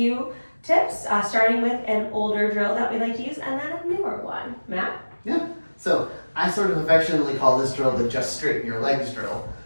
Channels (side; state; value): both; inverted; correlation -1.00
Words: tips, starting with an older drill that we like to use and then a newer one. Matt? Yeah, so I sort of affectionately call this drill the just straighten your legs drill.